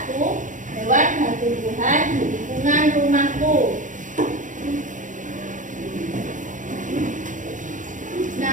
hewan dan tumbuhan di lingkungan rumahku.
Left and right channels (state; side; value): late; left; 0.37 ms